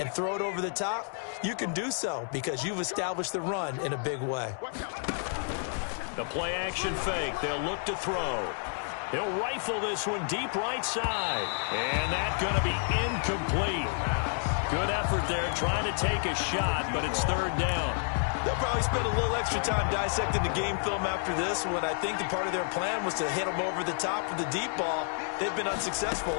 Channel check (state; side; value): silent; right; 58 dB below the other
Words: throw it over the top, you can do so because you've established the run in a big way. The play action fake. They'll look to throw. He'll rifle this one deep right side, and that's going to be incomplete. Good effort there trying to take a shot, but it's third down. They'll probably spend a little extra time dissecting the game film after this when I think the part of their plan was to hit them over the top with the deep ball. They've been unsuccessful